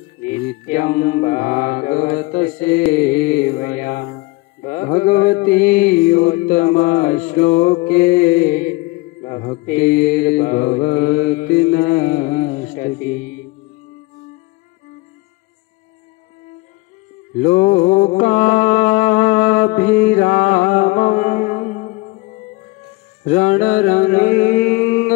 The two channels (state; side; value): quieter; right; 23.6 dB